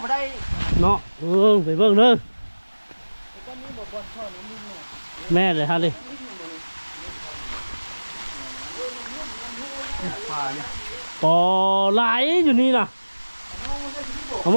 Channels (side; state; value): both; inverted; correlation -1.00